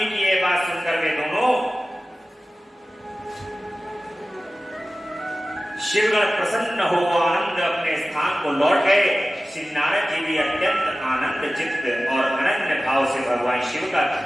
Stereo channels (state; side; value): normal; both; correlation 0.96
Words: की यह बात सुनकर वे दोनों शिवगण प्रसन्न हो आनंद अपने स्थान को लौट गए। श्री नारद जी भी अत्यंत आनंद चित्त और अनन्य भाव से भगवान शिव का